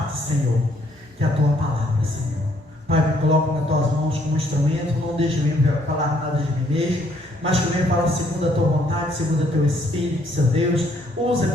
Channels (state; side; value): normal; both; correlation 0.67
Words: Senhor, que é a Tua palavra, Senhor. Pai, me coloco nas Tuas mãos como instrumento, não deixe eu falar nada de mim mesmo, mas que eu venha falar segundo a Tua vontade, segundo o Teu Espírito, Senhor Deus.